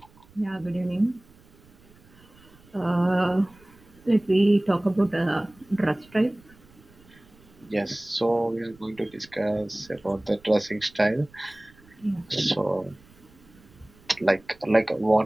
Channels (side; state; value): right; noise; rumble, 27 dB below the sound